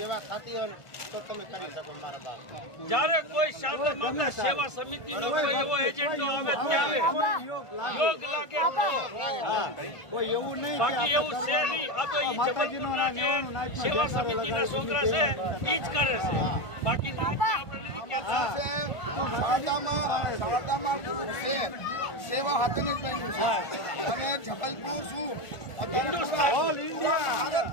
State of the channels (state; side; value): late; right; 1.5 ms